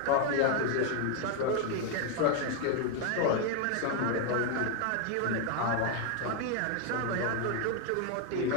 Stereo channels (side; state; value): both; different; correlation 0.01